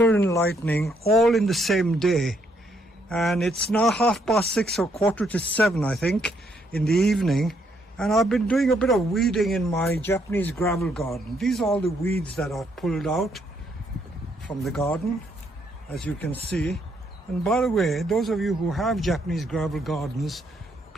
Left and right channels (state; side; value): normal; both; correlation 0.72